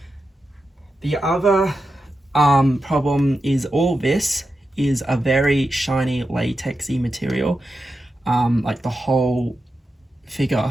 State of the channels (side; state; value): both; normal; correlation 0.90